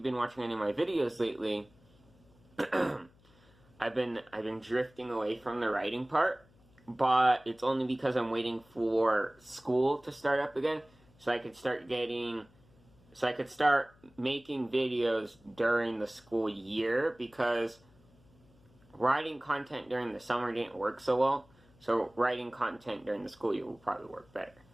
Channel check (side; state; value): left; noise; hum, 29 dB below the sound